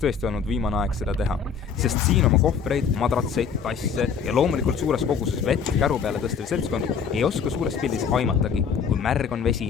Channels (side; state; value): right; quieter; 6.4 dB